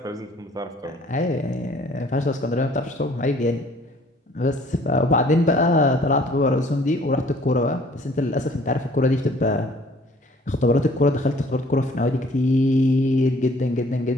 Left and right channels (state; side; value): normal; both; correlation 0.56